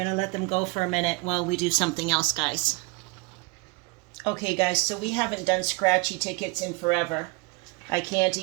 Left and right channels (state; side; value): quieter; left; 26.9 dB